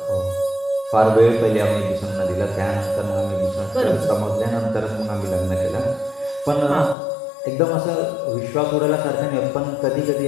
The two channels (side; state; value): right; drops out; at 7.0 s